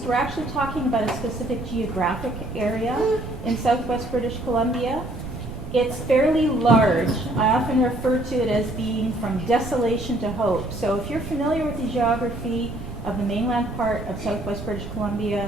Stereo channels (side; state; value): right; noise; rumble, 10 dB below the sound